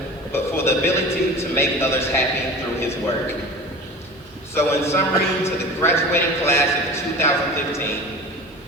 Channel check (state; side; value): normal; both; correlation 0.35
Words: but for the ability to make others happy through his work. So in summary, to the graduating class of 2015,